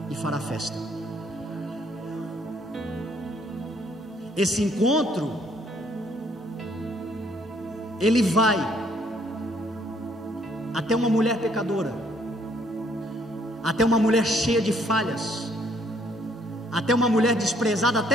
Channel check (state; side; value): normal; both; correlation 0.66